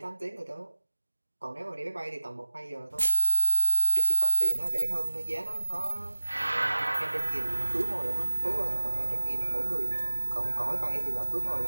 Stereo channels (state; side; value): inverted; both; correlation -1.00